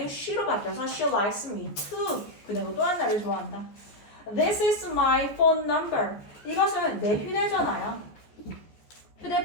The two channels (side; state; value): right; late; 14 ms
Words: she로 바뀌어서 she likes me too. 그녀도 또한 나를 좋아한다. This is my phone number. 이것은 내 휴대전화야.